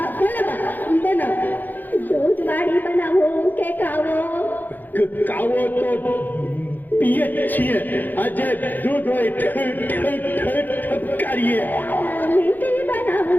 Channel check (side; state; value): right; late; 0.086 ms